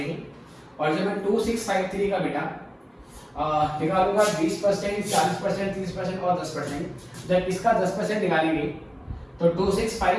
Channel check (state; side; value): identical; both; correlation 1.00